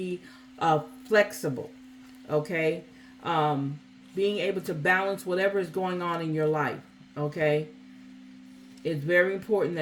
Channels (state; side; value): identical; both; correlation 1.00